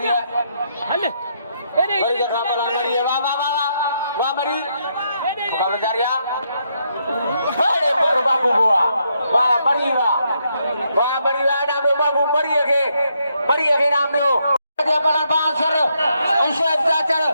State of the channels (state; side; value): inverted; both; correlation -0.77